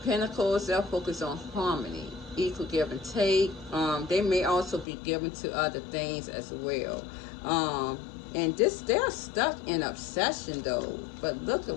Pentacles, they're focused on harmony, equal give and take. They may also be given to other things as well. And they're stuck in obsession though. But look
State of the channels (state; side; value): drops out; right; at 4.9 s